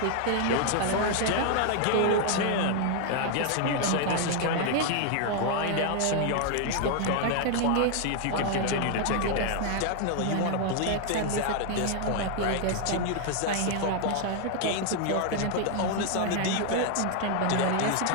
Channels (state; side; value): different; both; correlation 0.00